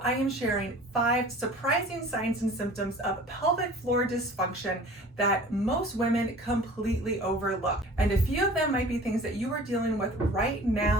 I am sharing 5 surprising signs and symptoms of pelvic floor dysfunction that most women completely overlook. And a few of them might be things that you are dealing with right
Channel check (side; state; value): both; normal; correlation 0.44